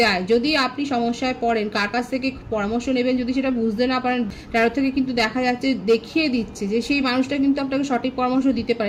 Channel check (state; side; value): identical; both; correlation 1.00